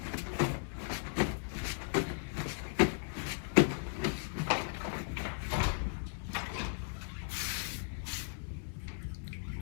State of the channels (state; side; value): silent; right; 53 dB below the other